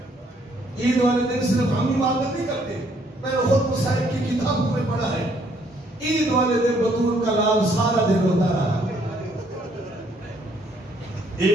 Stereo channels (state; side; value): normal; both; correlation 0.66